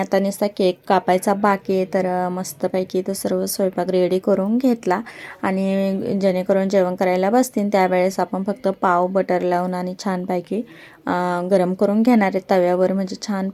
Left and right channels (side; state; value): both; identical; correlation 1.00